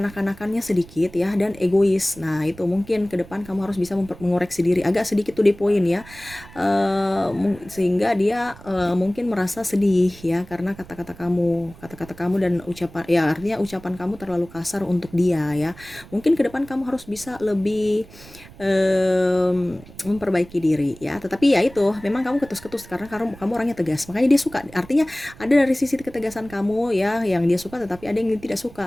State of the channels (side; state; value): right; noise; rumble, 20 dB below the sound